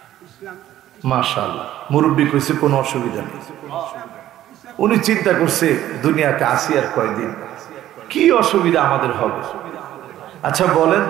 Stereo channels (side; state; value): left; quieter; 13.0 dB